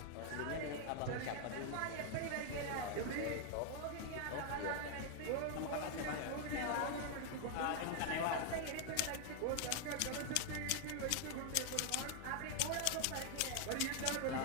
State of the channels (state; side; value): different; both; correlation 0.00